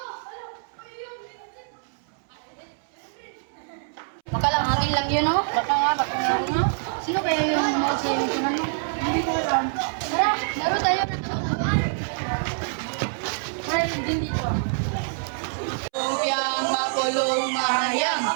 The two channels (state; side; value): silent; left; 61 dB below the other